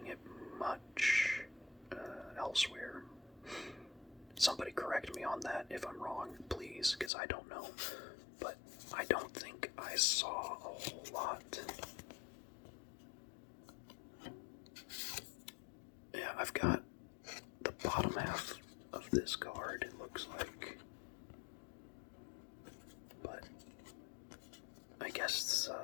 it much elsewhere. Somebody correct me on that if I'm wrong, please, because I don't know. But I don't think I saw a whole lot. Yeah, I've got the bottom half of this card, it looks like. But I guess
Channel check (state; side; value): drops out; right; at 7.1 s